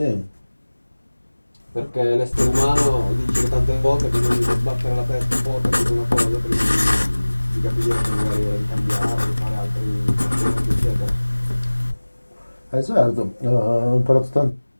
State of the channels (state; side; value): inverted; both; correlation -1.00